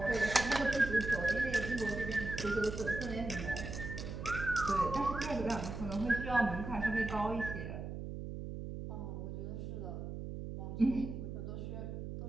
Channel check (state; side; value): noise; right; hum, 6 dB below the sound